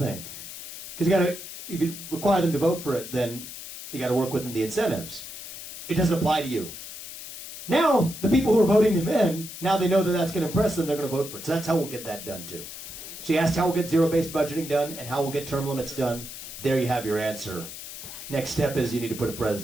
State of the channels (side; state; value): left; noise; hiss, 11 dB below the sound